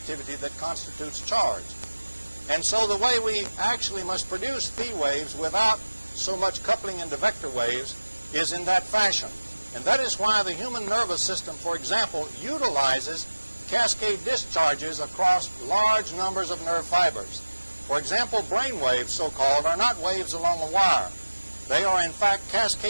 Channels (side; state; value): both; inverted; correlation -1.00